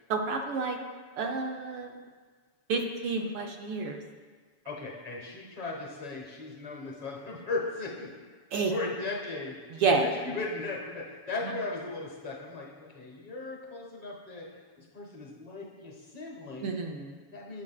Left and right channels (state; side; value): late; left; 7.1 ms